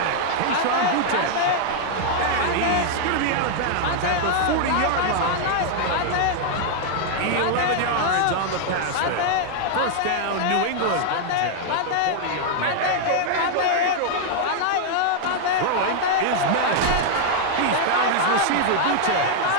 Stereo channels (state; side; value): different; both; correlation 0.00